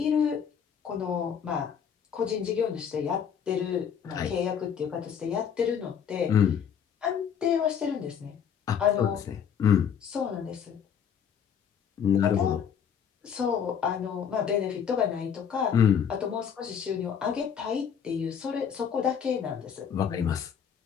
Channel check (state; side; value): quieter; right; 7.8 dB